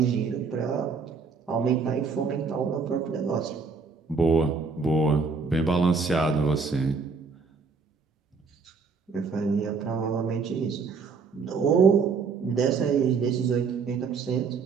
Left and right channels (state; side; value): quieter; left; 5.0 dB